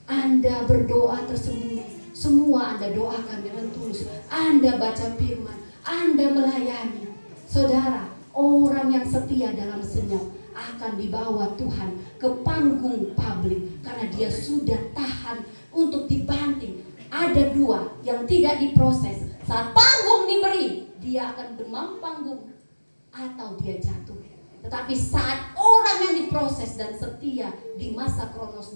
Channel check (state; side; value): inverted; both; correlation -1.00